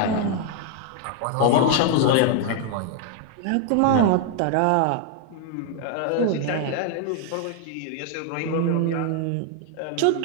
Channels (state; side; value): different; both; correlation 0.00